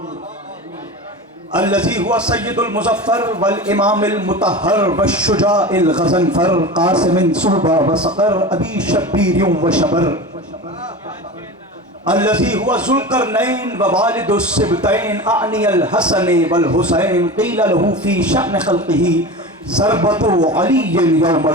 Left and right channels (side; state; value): both; normal; correlation 0.30